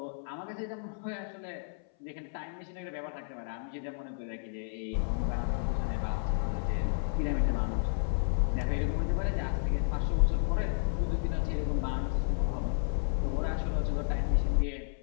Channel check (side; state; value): right; silent; 56 dB below the other